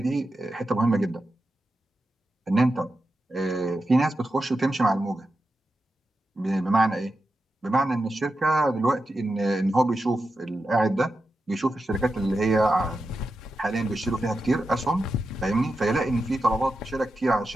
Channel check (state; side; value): normal; both; correlation 0.89